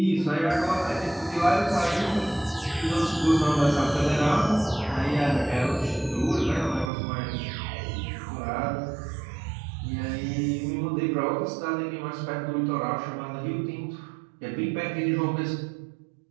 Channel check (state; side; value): drops out; left; at 6.9 s